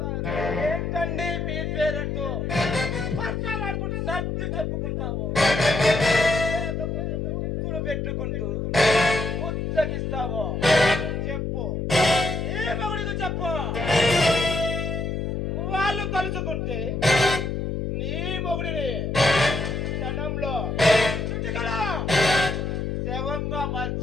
ఏంటండి మీ పేరెంట్తో పచ్చాలాడుకుంటూ సర్ది చెప్పుకుంటావు, ముక్కులు పెట్టుకుంటూ ముచ్చగిస్తావో చెప్పు, ఈ మగుడికి చెప్పు. వాళ్ళు కలుసుకుంటే నీ మొగుడిని క్షణంలో చుట్టుకలా శవంగా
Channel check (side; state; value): left; noise; hum, 2 dB below the sound